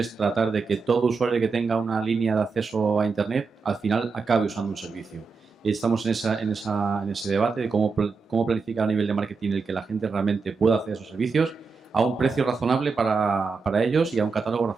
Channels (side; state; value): left; quieter; 4.7 dB